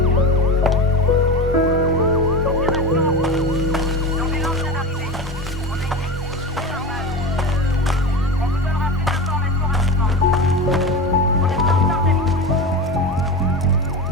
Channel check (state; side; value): normal; both; correlation 0.26